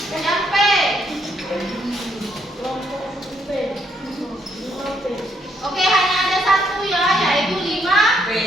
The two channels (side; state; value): both; normal; correlation 0.73